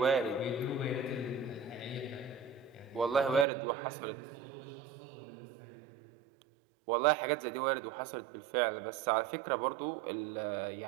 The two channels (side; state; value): left; drops out; at 3.5 s